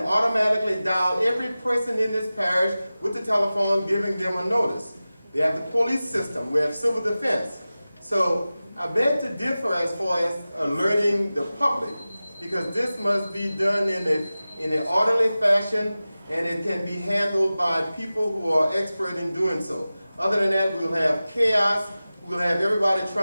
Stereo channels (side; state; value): both; inverted; correlation -0.96